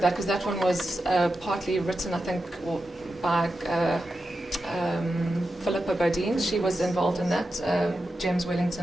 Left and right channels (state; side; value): normal; both; correlation 0.90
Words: that because that one was partly written, I think, by Philippa Bodine. She was involved in that. James